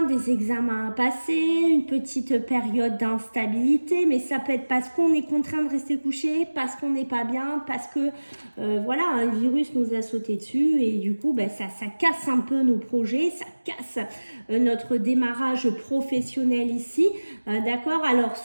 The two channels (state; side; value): inverted; both; correlation -1.00